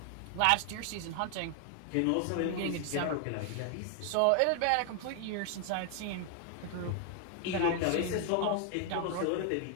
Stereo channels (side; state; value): both; different; correlation 0.00